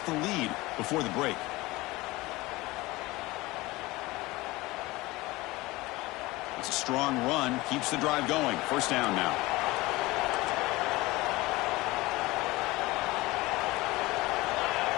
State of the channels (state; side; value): quieter; right; 20.7 dB